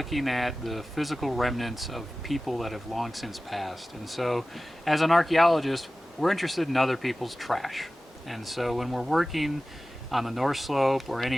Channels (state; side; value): normal; both; correlation 0.96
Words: at the physical remnants of people that have long since passed. And so as an archaeologist, we're interested in other people's trash. And so when we're working on the North Slope or